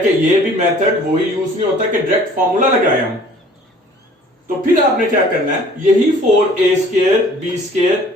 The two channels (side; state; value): both; normal; correlation 0.52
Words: कि ये भी मेथड वही यूज नहीं होता कि डायरेक्ट फॉर्मूला लगाए हम। तो फिर आपने क्या करना है, यही 4a स्क्वायर b